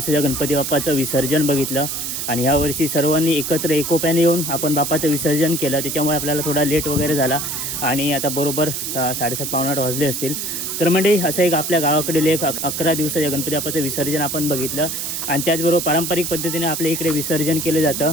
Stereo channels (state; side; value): noise; right; hiss, 4 dB below the sound